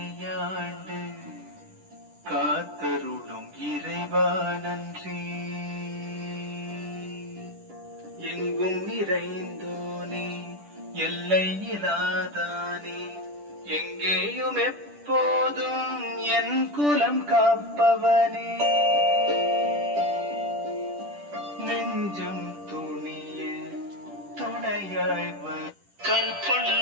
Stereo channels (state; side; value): late; left; 10 ms